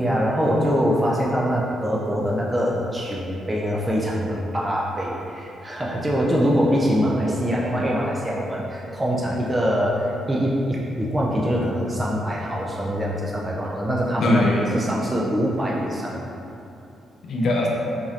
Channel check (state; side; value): normal; both; correlation 0.82